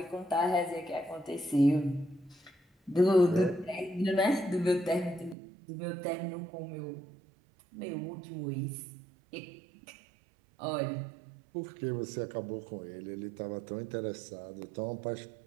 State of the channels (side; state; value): left; drops out; at 5.4 s